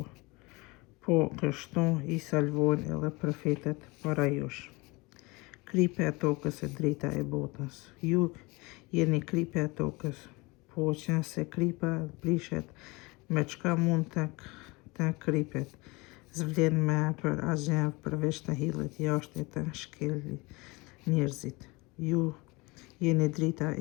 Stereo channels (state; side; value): quieter; right; 24.8 dB